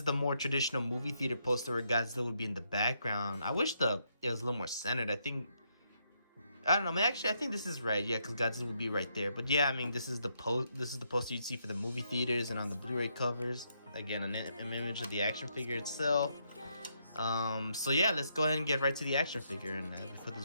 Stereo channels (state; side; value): inverted; both; correlation -0.77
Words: the more traditional movie theater poster where Godzilla would be in the background. I wish it was a little more centered. I don't know, man. Actually, I think this is right. Yeah, because Godzilla would be right there. But yeah, I mean, this is the poster you'd see for the movie theaters and on the Blu-ray covers. Again, an image of the action figure itself. So yeah, let's go ahead and get right to the action figure. And as we put